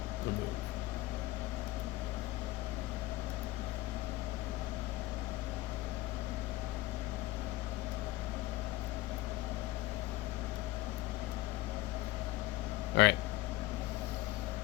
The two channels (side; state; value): right; quieter; 18.0 dB